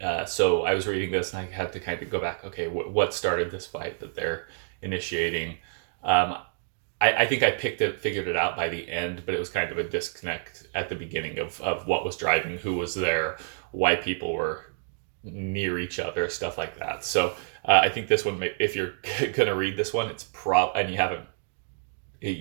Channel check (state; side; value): silent; left; digital silence